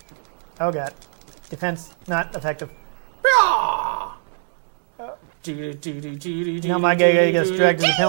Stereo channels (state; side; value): silent; left; 64 dB below the other